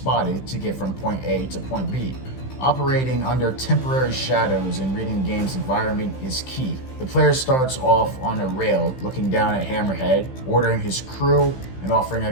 to get from point A to point B. Operating under temporary shadows and reading the game's environment is key. The player starts off on a rail, looking down at Hammerhead, ordering his crew, and offering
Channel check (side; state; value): right; late; 15 ms